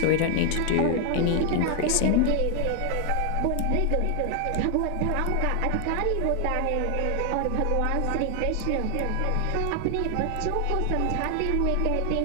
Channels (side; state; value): both; different; correlation 0.00